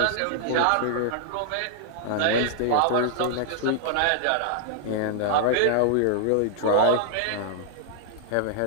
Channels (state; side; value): different; both; correlation -0.01